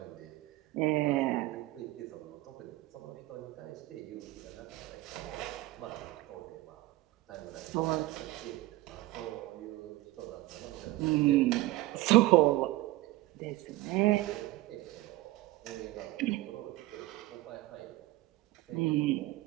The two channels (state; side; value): quieter; left; 18.2 dB